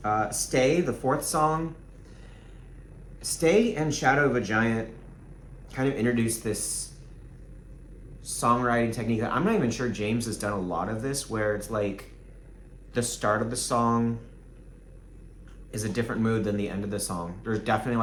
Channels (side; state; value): both; identical; correlation 1.00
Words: Stay, the fourth song. Stay and Shadow of a Giant kind of introduced this songwriting technique that I'm not even sure James has done a lot of this, where it's like the start of the song is a different mood than the end of the song. There's definitely